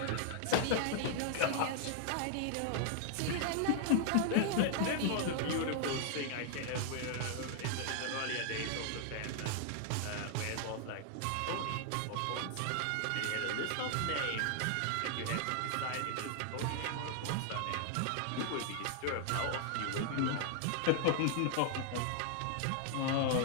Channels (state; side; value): different; both; correlation 0.00